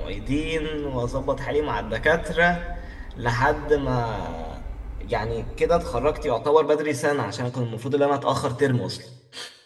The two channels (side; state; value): both; identical; correlation 1.00